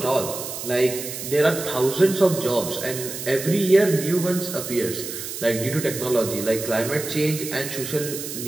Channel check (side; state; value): right; noise; hiss, 8 dB below the sound